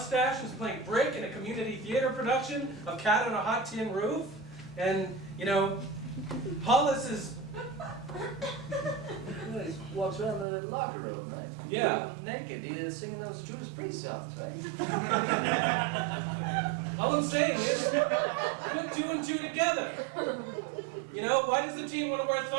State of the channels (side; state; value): left; drops out; at 10.5 s